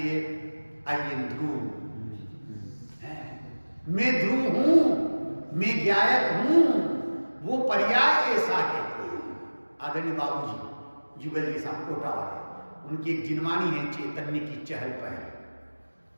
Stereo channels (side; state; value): both; inverted; correlation -1.00